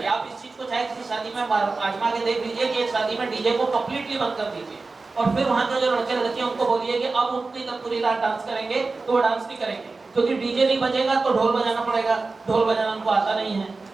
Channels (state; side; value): quieter; left; 3.8 dB